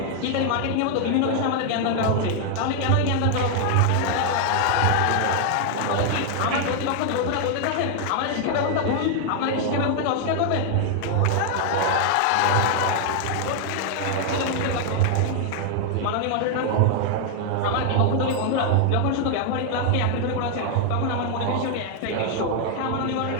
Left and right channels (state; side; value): different; both; correlation 0.00